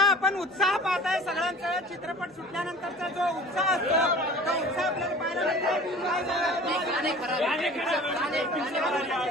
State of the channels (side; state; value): both; normal; correlation 0.43